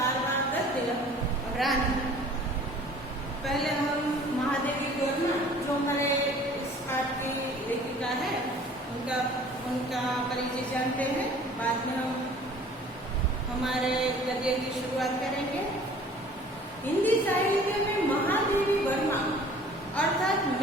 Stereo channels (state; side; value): normal; both; correlation 0.50